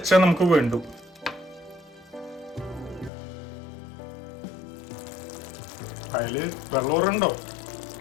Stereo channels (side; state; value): right; drops out; at 3.1 s